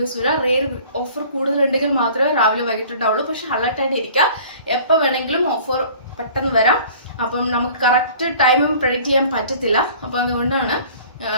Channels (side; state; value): both; inverted; correlation -0.48